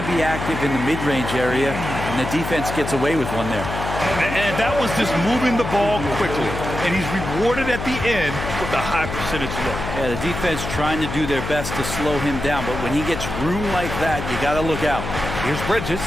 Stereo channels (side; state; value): left; noise; hum, 6 dB below the sound